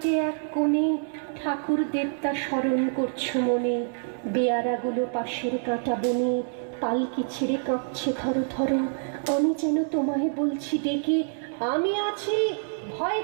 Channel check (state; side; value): silent; left; 59 dB below the other